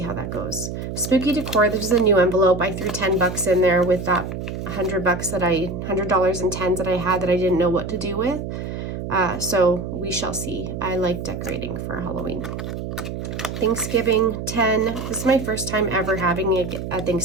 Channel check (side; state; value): right; noise; hum, 6 dB below the sound